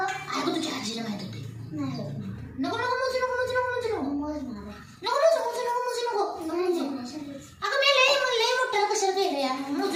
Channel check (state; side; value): identical; both; correlation 1.00